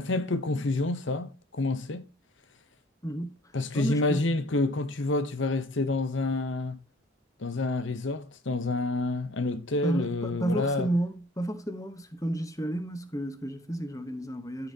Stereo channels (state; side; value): normal; both; correlation 0.54